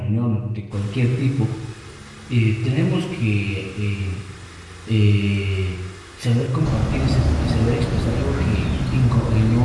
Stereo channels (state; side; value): identical; both; correlation 1.00